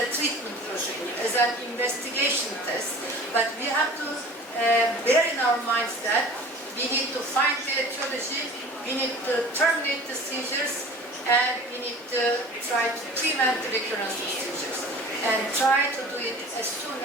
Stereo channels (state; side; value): normal; both; correlation 0.42